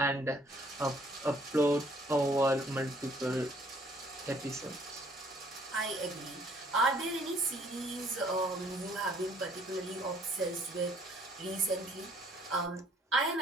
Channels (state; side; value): normal; both; correlation 0.61